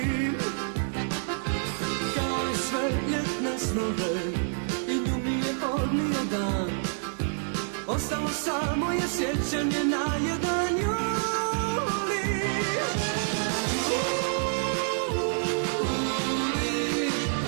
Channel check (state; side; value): silent; left; 59 dB below the other